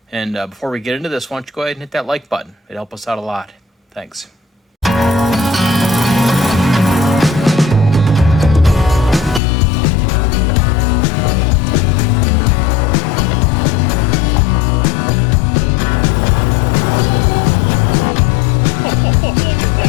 and before we get into this, why don't you go ahead and hit that like button. It'd help us out a lot. Thanks.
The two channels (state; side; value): drops out; right; at 9.4 s